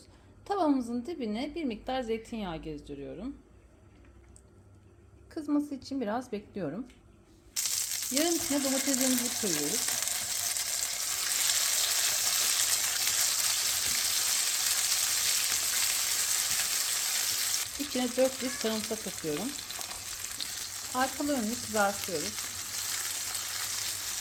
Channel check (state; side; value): identical; both; correlation 1.00